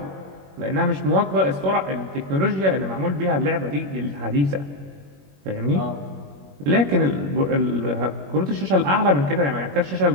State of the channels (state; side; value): late; left; 21 ms